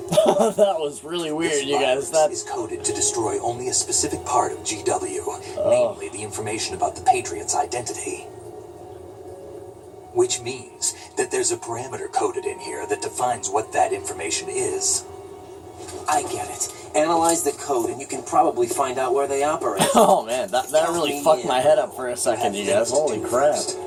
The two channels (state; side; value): identical; both; correlation 1.00